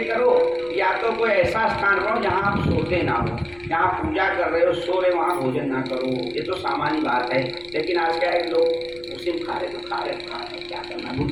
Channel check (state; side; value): noise; left; rumble, 23 dB below the sound